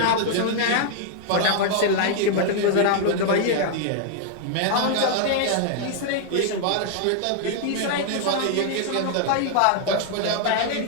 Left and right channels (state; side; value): different; both; correlation 0.00